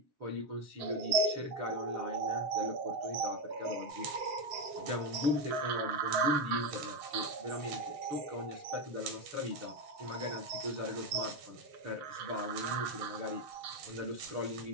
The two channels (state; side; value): late; left; 7.6 ms